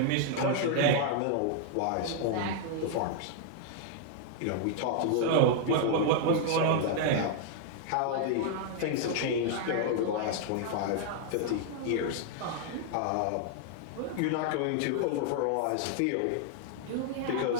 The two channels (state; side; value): different; both; correlation 0.00